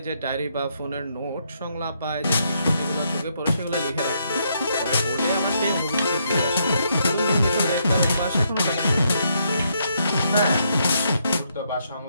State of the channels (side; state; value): both; inverted; correlation -0.76